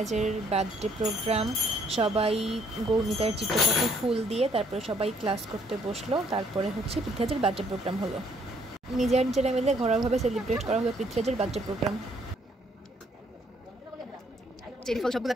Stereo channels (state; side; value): normal; both; correlation 0.66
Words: বার্থডে প্রোগ্রাম। সবাই গৌনিতার চিত্রপটে ফুল দিয়ে তারপরে সবাই ক্লাস করতে বসলো। তারপরে হচ্ছে পৃথ্বীরাজের বার্থডে প্রোগ্রাম হলো। নিজেরা মিলে ঘরোয়াভাবে সেলিব্রেট করা হলো পৃথ্বীরাজের বার্থডে প্রোগ্রাম। চেরি ফল সবগুলো